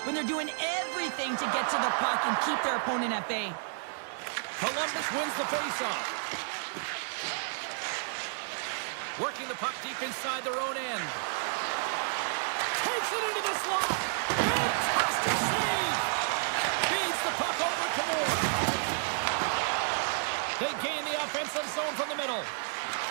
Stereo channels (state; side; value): silent; left; digital silence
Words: when they're doing everything to get to the puck and keep their opponent at bay. Columbus wins the faceoff. Working the puck deep inside their own end. Takes it into the slot. Fantastic save. Feeds the puck over to Moore. They gain the offensive zone from the middle.